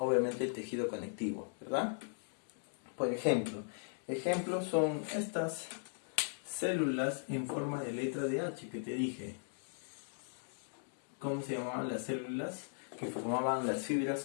el tejido conectivo, ¿verdad? Por ejemplo, ejemplos son estas células en forma de letra de H que te dije. ¿Cómo se llamaban las células que formaban las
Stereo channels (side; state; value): right; silent; digital silence